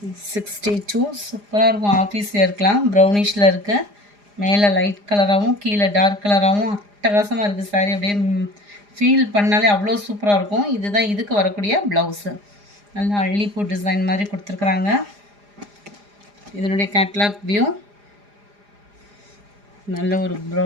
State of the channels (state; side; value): late; left; 4.9 ms